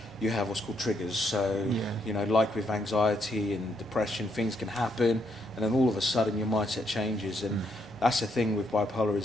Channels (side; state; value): both; normal; correlation 0.75